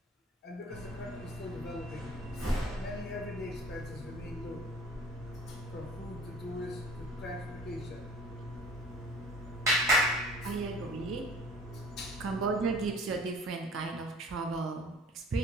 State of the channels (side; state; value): both; normal; correlation 0.48